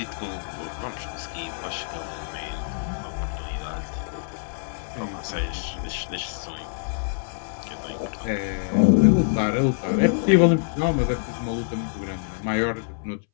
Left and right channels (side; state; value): right; silent; 61 dB below the other